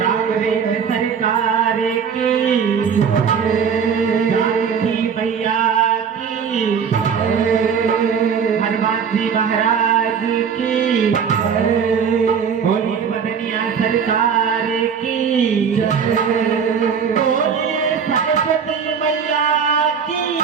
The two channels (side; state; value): left; quieter; 6.8 dB